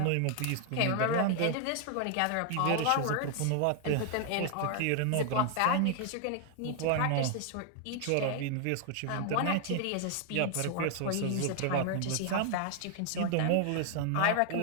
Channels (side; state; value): both; different; correlation 0.00